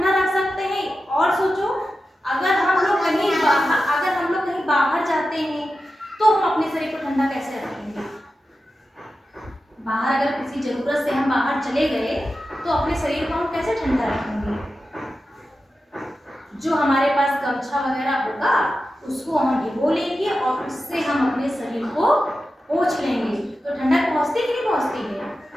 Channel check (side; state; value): both; normal; correlation 0.92